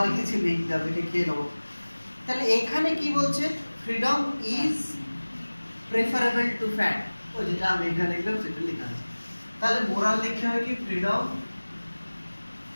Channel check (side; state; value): both; inverted; correlation -1.00